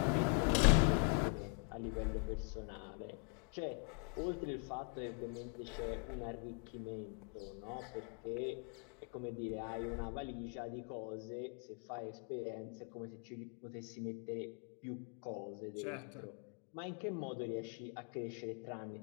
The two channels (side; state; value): right; quieter; 38.0 dB